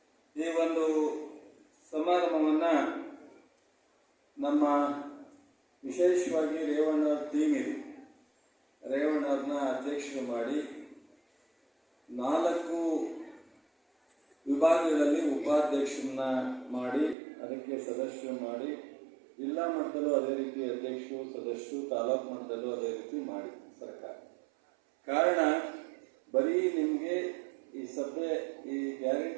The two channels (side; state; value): left; drops out; at 17.2 s